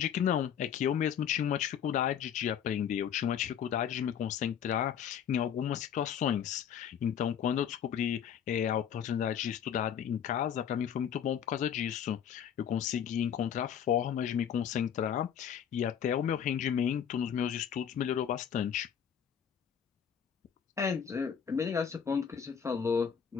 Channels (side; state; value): right; quieter; 8.5 dB